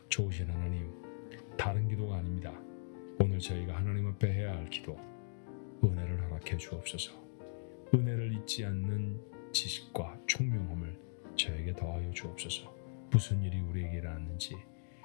좋으신 하나님, 다른 기도가 아닙니다. 오늘 저희가 하나님 앞에 해야 할 기도, 은혜를 허락해 주옵소서. 은혜를 잊지 않는 지식과 총명함을 저에게 더하여 주옵소서. 무슨 일이 우리에게 일어났는지,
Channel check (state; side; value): silent; right; digital silence